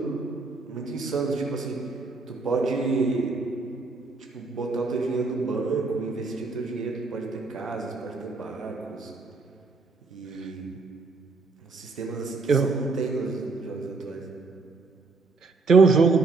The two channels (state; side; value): quieter; left; 3.9 dB